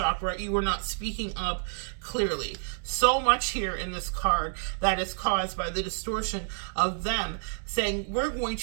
you are not speaking up clearly. So much here in this card that is caused by the distortion of them saying, we're going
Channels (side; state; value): left; silent; digital silence